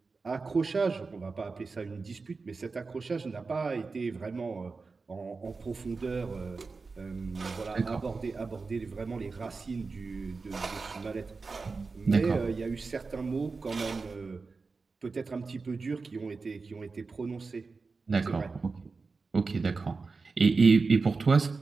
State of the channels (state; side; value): quieter; left; 4.3 dB